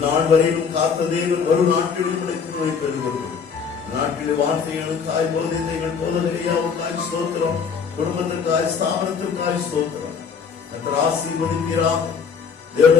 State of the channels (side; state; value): right; quieter; 6.2 dB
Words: வரையிலும் காத்த தேவன் வரும் நாட்களில் நோய் பெறுவீர்கள். நாட்களில் வார்த்தைகளுக்காய், போதித்தைகள், போதனையாவுக்காய் ஸ்தோத்திரம், குடும்பத்திற்காய், ஸ்தாபனத்திற்காய் ஸ்தோத்திரம். ஆசீர்வதிக்கிறார்.